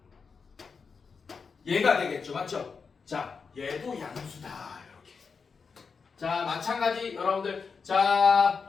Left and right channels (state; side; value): quieter; right; 5.3 dB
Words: 얘가 되겠죠, 맞죠? 자, 얘도 양수다, 이렇게. 자, 마찬가지 여러분들, 자,